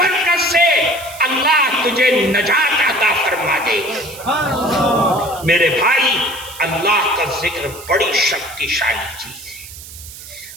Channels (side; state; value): right; noise; hiss, 15 dB below the sound